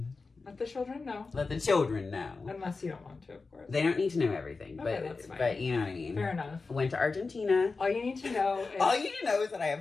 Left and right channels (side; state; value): right; quieter; 4.1 dB